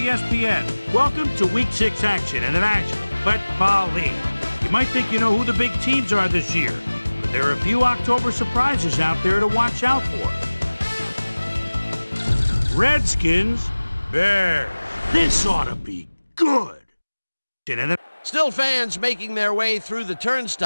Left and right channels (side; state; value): both; inverted; correlation -1.00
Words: Welcome to Week 6 action in the National Football League. You might think you know who the big teams are this year, but there are a few October surprises out there to watch out for. Redskins, Bears. This ought to be good. Still fans making their way through the